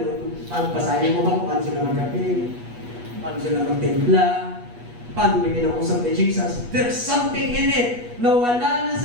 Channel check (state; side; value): late; left; 8.3 ms